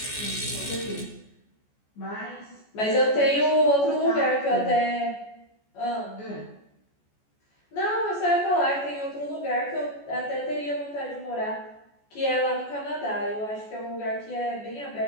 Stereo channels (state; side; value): late; right; 14 ms